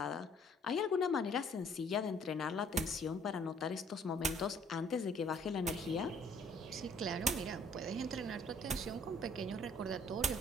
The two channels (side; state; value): both; normal; correlation 0.59